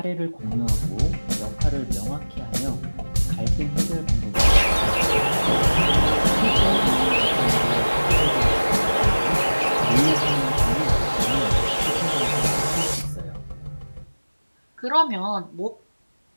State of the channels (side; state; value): both; inverted; correlation -1.00